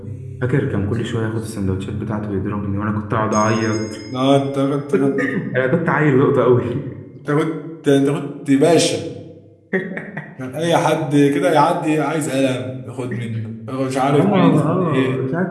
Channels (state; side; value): identical; both; correlation 1.00